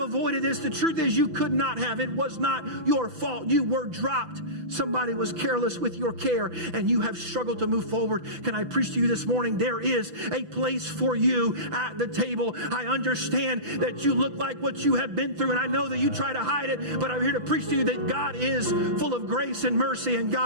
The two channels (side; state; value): left; late; 5.9 ms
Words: avoided this? The truth is you could not have. It was not your fault. You were dropped. Somebody was careless with your care, and you have struggled to move forward. Can I preach to you this morning? There is a place for you at the table. I understand that you look like what you have been through, and I know that you try to hide it, but I'm here to preach to you that God is full of grace and mercy, and